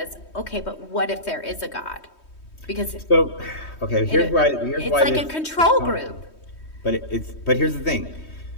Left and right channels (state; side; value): late; right; 3.2 ms